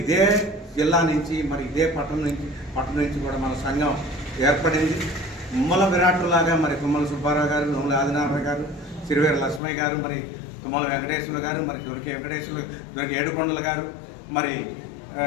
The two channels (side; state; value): right; drops out; at 9.6 s